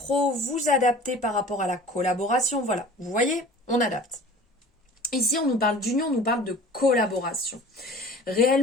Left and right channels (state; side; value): normal; both; correlation 0.43